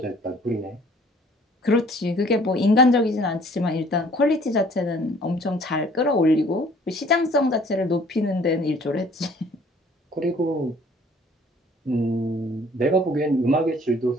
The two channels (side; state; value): both; normal; correlation 0.55